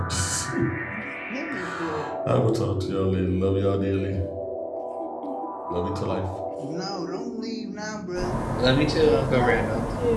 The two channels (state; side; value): identical; both; correlation 1.00